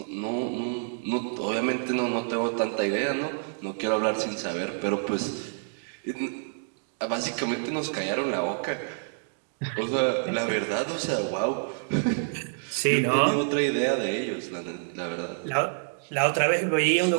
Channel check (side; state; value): left; silent; digital silence